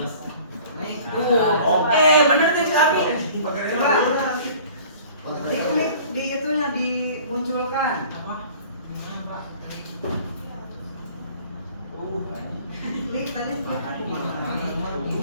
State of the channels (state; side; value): inverted; both; correlation -0.49